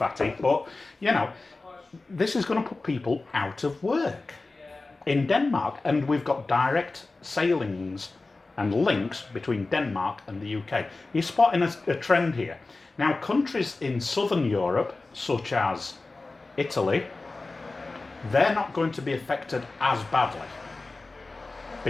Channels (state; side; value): quieter; right; 3.4 dB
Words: But, this is going to put people out of work in Denmark, and we've got direct sailings and links between Denmark and the UK. You're spotting a trend here. Now, countries in southern Europe, such as Italy, they're not going to be affected as badly.